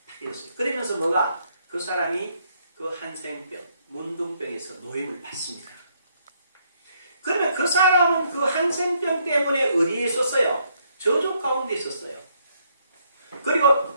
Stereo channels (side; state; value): both; inverted; correlation -0.72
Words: 그랬어요. 그러면서 뭐가 그 사람이 그 한센병, 문둥병에서 노임을 받습니다. 그러면 그 사람은 그 한센병 때문에 어디에 있었어요? 저주 가운데 있었어요. 그리고